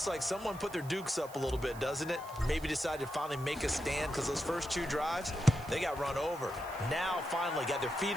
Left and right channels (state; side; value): noise; right; hiss, 19 dB below the sound